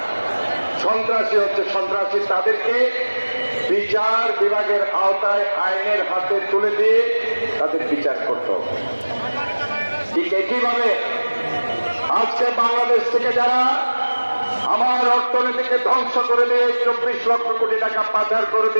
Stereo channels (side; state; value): both; inverted; correlation -1.00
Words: সন্ত্রাসী হচ্ছে সন্ত্রাসী। তাদেরকে বিচার বিভাগের আওতায় আইনের হাতে তুলে দিয়ে তাদের বিচার করতে হবে। ঠিক একইভাবে আজকে বাংলাদেশ থেকে যারা আমার অর্থনীতিকে ধ্বংস করে দিয়ে 24 লক্ষ কোটি টাকা পাচার করে